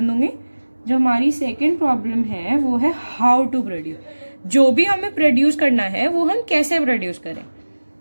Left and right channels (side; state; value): both; inverted; correlation -1.00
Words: दूंगी. जो हमारी सेकेंड प्रॉब्लम है वो है हाउ टू प्रोड्यूस, जो भी हमें प्रोड्यूस करना है वो हम कैसे प्रोड्यूस करें.